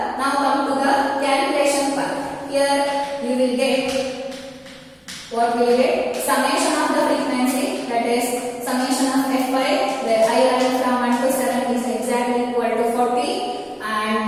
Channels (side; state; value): both; identical; correlation 1.00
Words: Now come to the calculation part. Here you will get what we will get? Summation of the frequency, that is summation of F5 where I running from 1 to 7 is exactly equal to 40, and